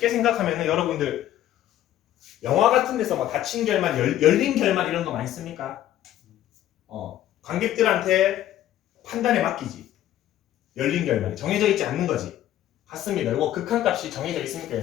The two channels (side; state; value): right; quieter; 12.7 dB